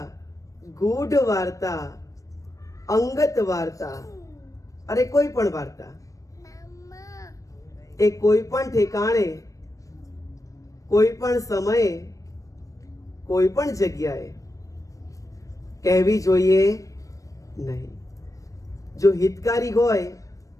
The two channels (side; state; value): right; late; 0.16 ms